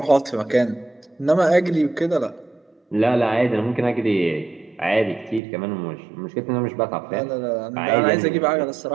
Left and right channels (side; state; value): left; drops out; at 5.4 s